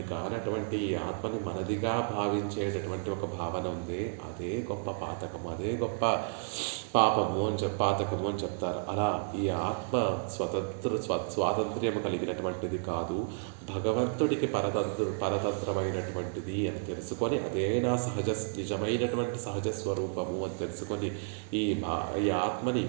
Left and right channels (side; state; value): left; silent; digital silence